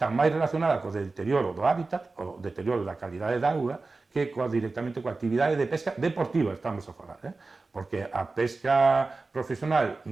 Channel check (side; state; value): left; quieter; 3.7 dB